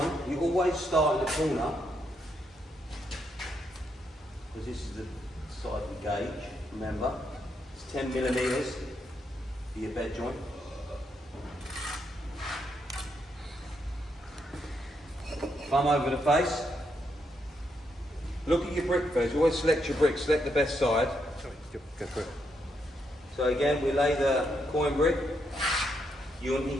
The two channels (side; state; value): both; normal; correlation 0.79